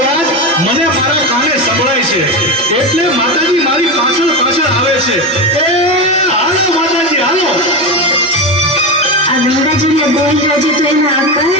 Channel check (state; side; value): normal; both; correlation 0.17